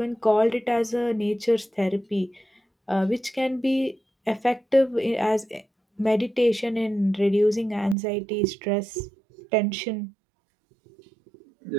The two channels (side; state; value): left; drops out; at 8.0 s